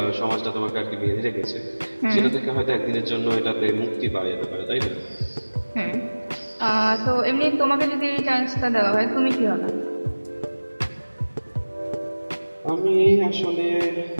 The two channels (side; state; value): both; inverted; correlation -1.00